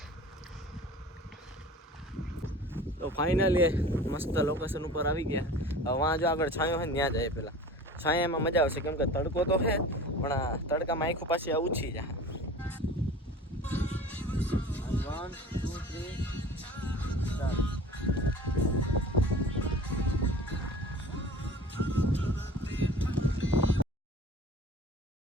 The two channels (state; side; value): normal; both; correlation 0.41